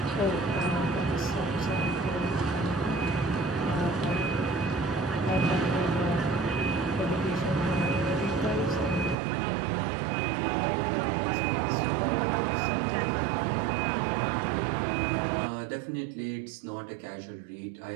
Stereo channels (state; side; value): drops out; left; at 9.2 s